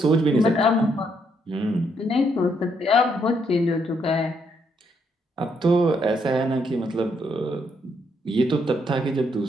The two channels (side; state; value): both; normal; correlation 0.74